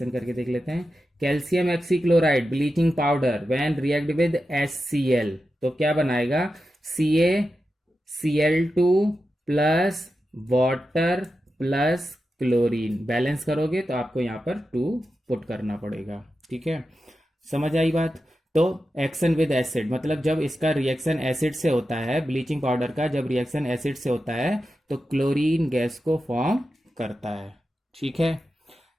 करके देख लेते हैं। Calcium oxychloride bleaching powder when react with HCl, तो क्या बनाएगा, CaCl2 plus water plus chlorine, balance करोगे तो आपको यहां पर 2 पुट करना पड़ेगा। ठीक है, समझ आई बात। तो एक्शन विद एसिड मतलब जब इसका रिएक्शन एसिड से होता है, ब्लीचिंग पाउडर का जब रिएक्शन एसिड से होता है तो क्लोरीन गैस को फॉर्म करता है। ठीक है,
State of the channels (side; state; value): both; normal; correlation 0.91